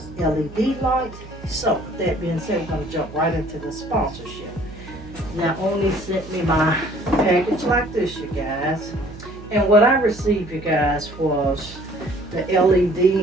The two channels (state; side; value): noise; right; hum, 16 dB below the sound